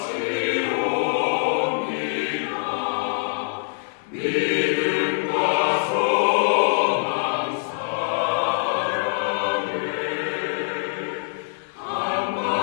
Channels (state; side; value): silent; right; digital silence